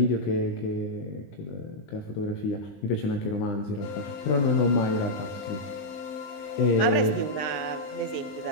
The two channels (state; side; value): late; right; 20 ms